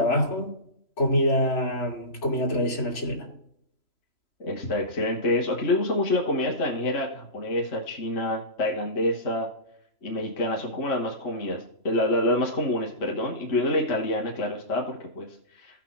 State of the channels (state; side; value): late; right; 3.0 ms